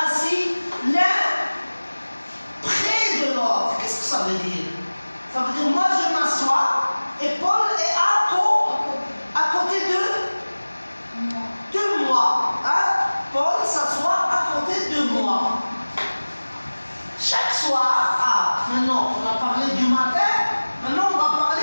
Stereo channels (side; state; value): both; inverted; correlation -1.00